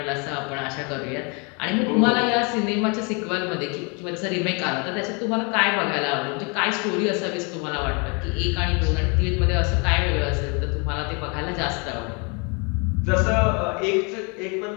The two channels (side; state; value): right; quieter; 32.7 dB